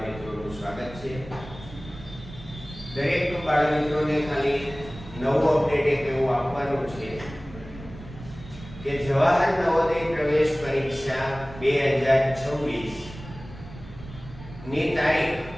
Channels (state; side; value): noise; right; rumble, 15 dB below the sound